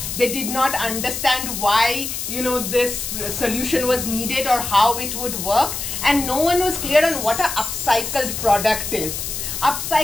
They did not understand why, this solution was needed or how it would work. And no one was clear on what an upcycled product is.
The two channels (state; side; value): noise; left; hiss, 5 dB below the sound